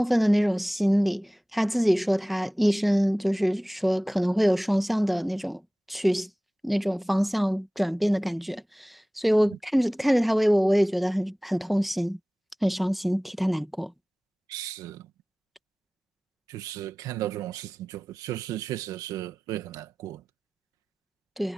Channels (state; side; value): normal; both; correlation 0.98